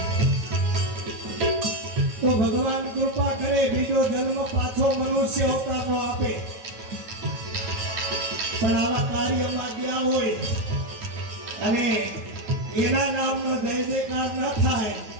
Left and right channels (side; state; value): left; late; 9.3 ms